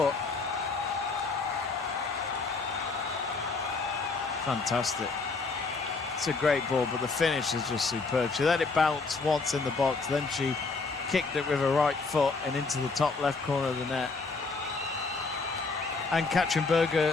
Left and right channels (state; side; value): quieter; right; 4.1 dB